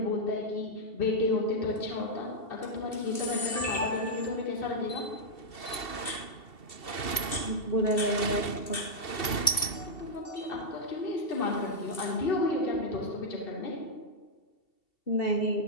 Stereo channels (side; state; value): right; late; 2.7 ms